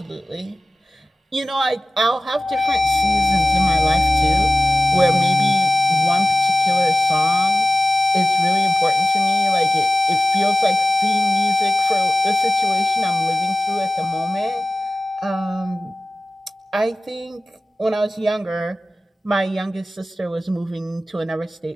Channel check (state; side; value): normal; both; correlation 0.94